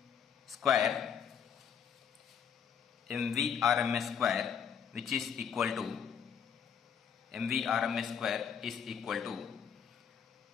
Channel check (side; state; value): right; quieter; 7.6 dB